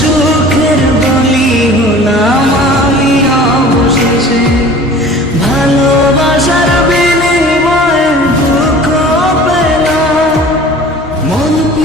বলি হলাম আমি অবশেষে। ভালোবাসার বিনিময়ে দুঃখ পেলাম, মন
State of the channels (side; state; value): both; normal; correlation 0.44